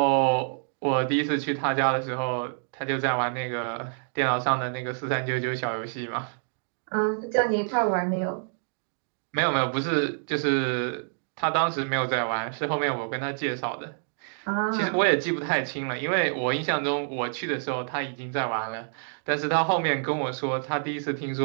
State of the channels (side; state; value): left; silent; digital silence